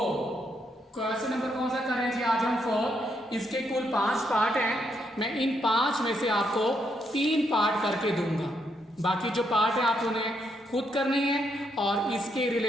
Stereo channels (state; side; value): normal; both; correlation 0.77